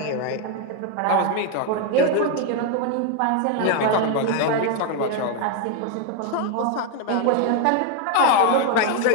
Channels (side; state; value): both; different; correlation 0.01